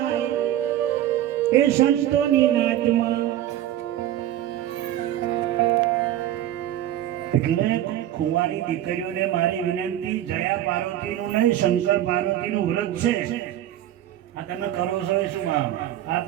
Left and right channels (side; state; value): left; quieter; 12.5 dB